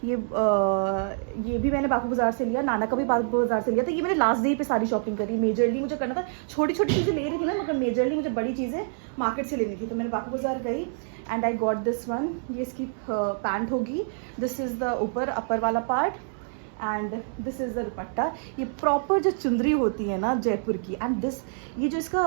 ये भी मैंने बापू बाजार से लिया, नाना का भी बापू बाजार से लिया। तो ये मैंने लास्ट डे पे सारी शॉपिंग करी। मेजरली मुझे करना था, छोटी छोटी चीज़ें ले रही थी ना, मगर मेजरली मुझे बड़ी चीज़ें मार्केट से लेनी थी, तो मैंने बापू बाजार गई, and I got this one. ये इसकी पैंट होगी, दिस इज़ द ऊपर अपर वाला part, and this is the दुपट्टा। ये प्रॉपर जो चुंदरी होती है ना जयपुर की, एंड दिस, ये जो इसका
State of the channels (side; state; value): left; silent; 60 dB below the other